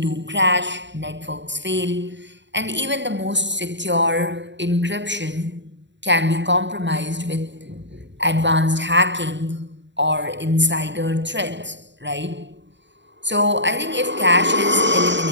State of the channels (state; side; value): late; left; 0.53 ms